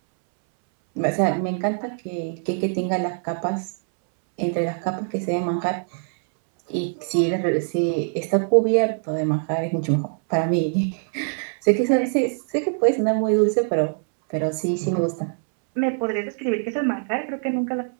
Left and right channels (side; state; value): left; silent; 63 dB below the other